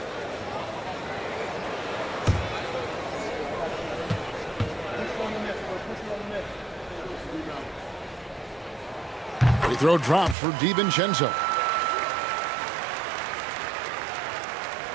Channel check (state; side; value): drops out; left; at 10.4 s